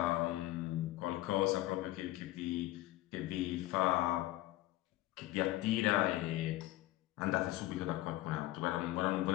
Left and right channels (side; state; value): right; quieter; 16.7 dB